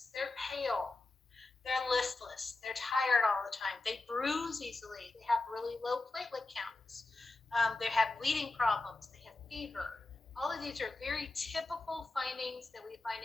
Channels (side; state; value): right; quieter; 3.2 dB